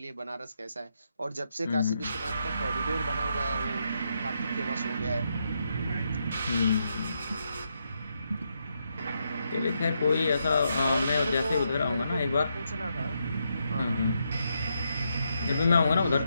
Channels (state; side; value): inverted; both; correlation -0.81